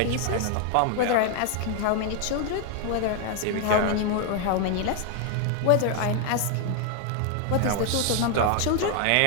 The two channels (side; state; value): both; different; correlation 0.00